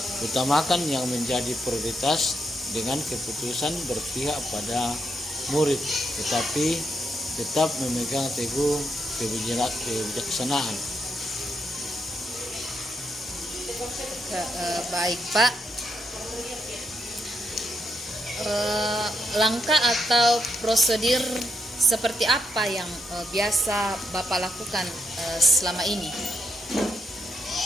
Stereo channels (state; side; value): normal; both; correlation 0.80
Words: Utamakan yang menjadi prioritas dengan keputusan berpihak pada murid, tetapi tetap memegang teguh kebijaksanaan. Baik Pak. Langkah atau prosedur seperti apa yang biasa Bapak lakukan selama ini?